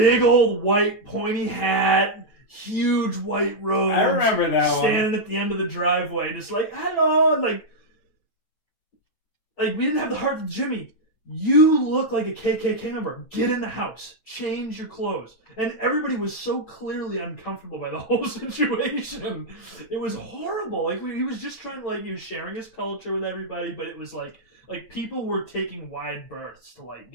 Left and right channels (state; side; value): late; right; 9.1 ms